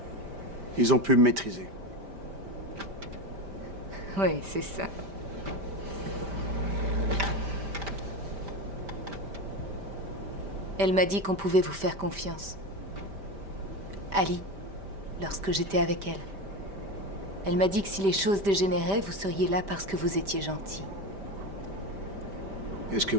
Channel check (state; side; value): late; left; 5.1 ms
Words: Ils ont pu me maîtriser. Oui, c'est ça. Elle m'a dit qu'on pouvait vous faire confiance. Ali, lorsque j'étais avec elle. Elle m'a dit que si les choses dégénéraient, vous seriez là parce que vous étiez gentil. Qu'est-ce que